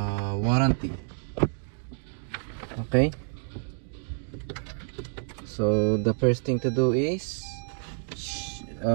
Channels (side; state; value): left; silent; 59 dB below the other